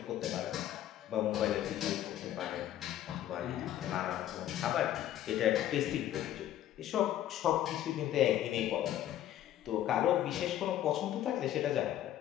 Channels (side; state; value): right; quieter; 12.3 dB